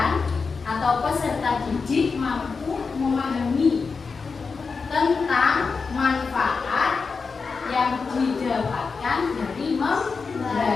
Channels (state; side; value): quieter; right; 4.8 dB